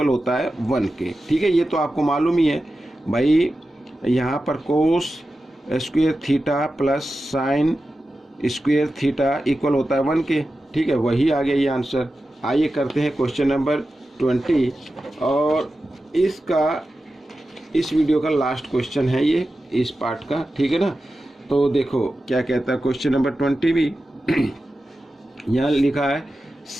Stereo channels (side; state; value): both; normal; correlation 0.93